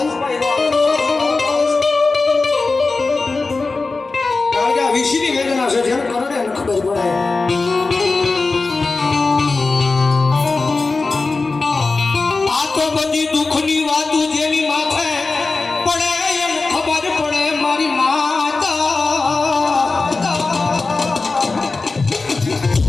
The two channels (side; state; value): right; quieter; 3.8 dB